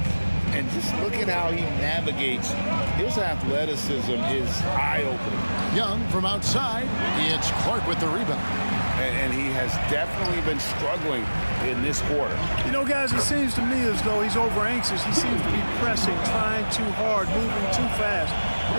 And just look at how he navigates. His athleticism is eye-opening. Young from outside. It's Clark with the rebound. And he has definitely been struggling in this quarter. You know, guys, it seems to me as though he's over anxious. He seems to be pressing, trying too hard, moving too fast.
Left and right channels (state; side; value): inverted; both; correlation -1.00